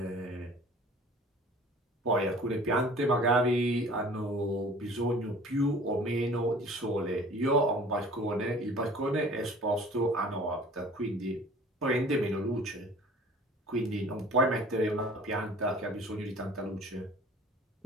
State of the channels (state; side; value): normal; both; correlation 0.47